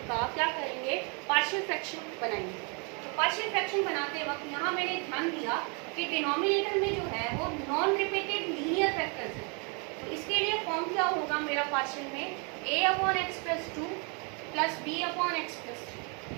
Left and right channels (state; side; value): quieter; left; 34.6 dB